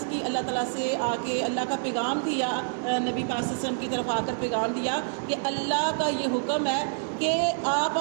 کی اللہ تعالیٰ سے, آ کے اللہ کا پیغام دیا, نبی پاک صلی اللہ علیہ وسلم کی طرف آ کر پیغام دیا کہ اللہ کا یہ حکم ہے کہ آپ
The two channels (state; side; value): silent; left; digital silence